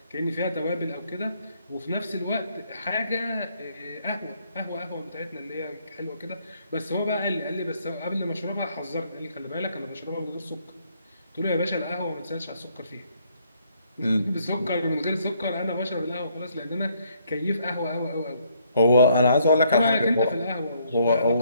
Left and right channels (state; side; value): inverted; both; correlation -0.69